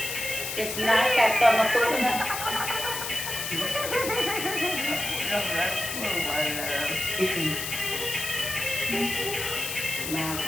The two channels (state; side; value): noise; left; hiss, 4 dB below the sound